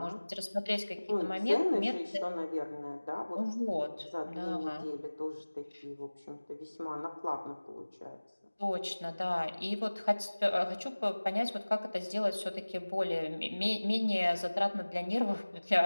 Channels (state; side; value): inverted; both; correlation -1.00